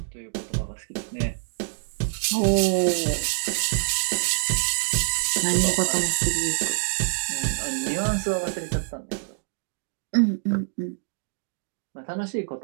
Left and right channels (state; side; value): silent; left; digital silence